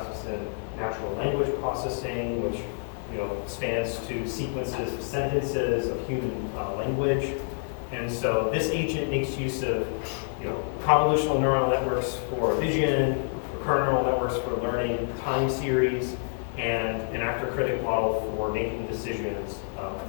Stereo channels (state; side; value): silent; right; digital silence